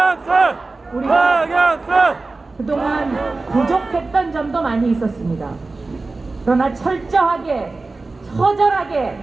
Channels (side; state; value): left; quieter; 3.5 dB